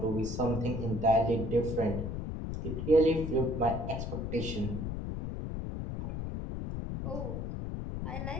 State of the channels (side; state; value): left; noise; rumble, 4 dB below the sound